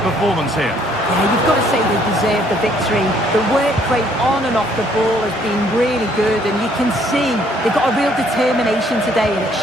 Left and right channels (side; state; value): both; normal; correlation 0.64